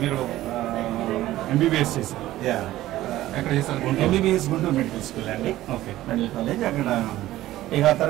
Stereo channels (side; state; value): left; quieter; 15.2 dB